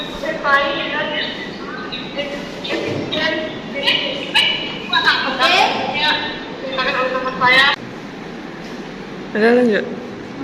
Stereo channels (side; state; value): both; identical; correlation 1.00